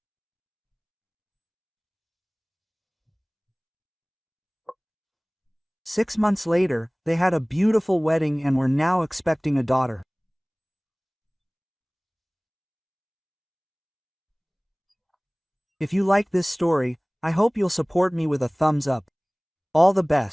Six months later, they had a beautiful wedding and were now expecting a daughter. If you like this story, I hope you'll support me with a thumbs up. All the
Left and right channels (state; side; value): identical; both; correlation 1.00